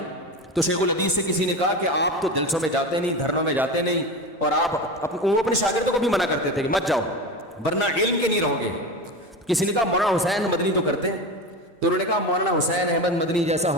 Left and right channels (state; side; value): normal; both; correlation 0.24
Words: تو شیخ الحدیث سے کسی نے کہا کہ آپ تو جلسوں میں جاتے نہیں، دھرنوں میں جاتے نہیں، اور آپ وہ اپنے شاگردوں کو بھی منع کرتے تھے کہ مت جاؤ ورنہ علم کے نہیں رہو گے. کسی نے کہا مولانا حسین مدنی تو کرتے ہیں، تو انہوں نے کہا مولانا حسین احمد مدنی جیسا